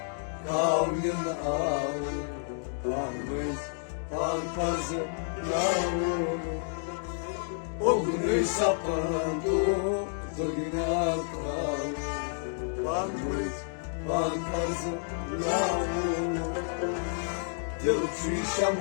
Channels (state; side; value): silent; right; digital silence